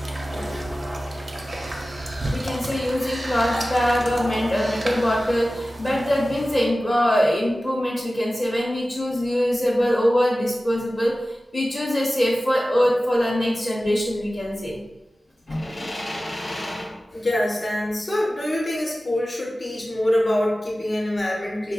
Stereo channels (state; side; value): normal; both; correlation 0.96